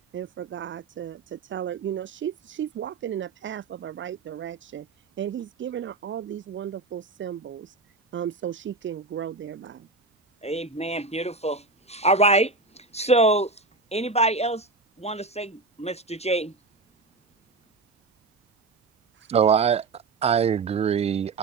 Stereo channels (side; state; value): left; quieter; 3.8 dB